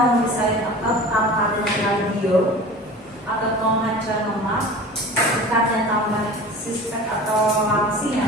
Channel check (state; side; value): normal; both; correlation 0.38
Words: misalnya otot tanpa adanya kardio atau mau ngecor lemak, dekatnya tambah six-pack atau langsing